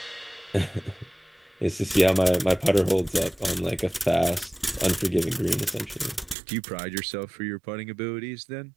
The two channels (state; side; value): drops out; left; at 6.4 s